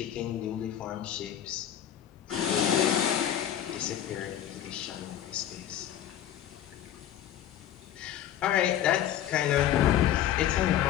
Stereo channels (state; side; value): quieter; right; 11.0 dB